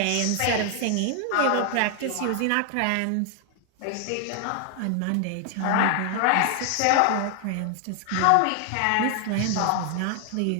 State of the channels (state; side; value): different; both; correlation 0.00